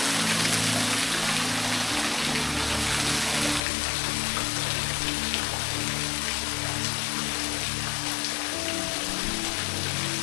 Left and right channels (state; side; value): drops out; right; at 3.6 s